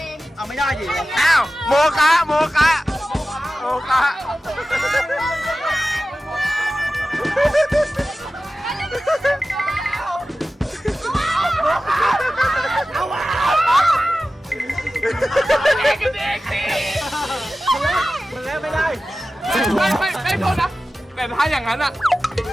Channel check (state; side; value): normal; both; correlation 0.95